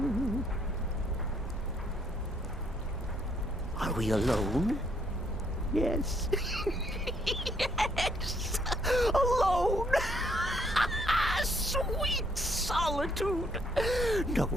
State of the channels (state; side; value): normal; both; correlation 0.69